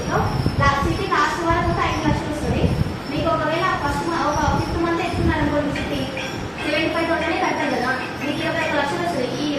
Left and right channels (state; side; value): identical; both; correlation 1.00